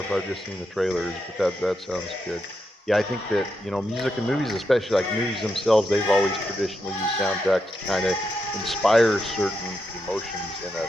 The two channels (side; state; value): both; normal; correlation 0.84